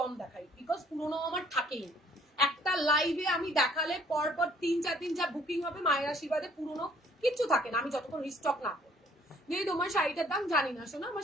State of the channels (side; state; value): both; normal; correlation 0.60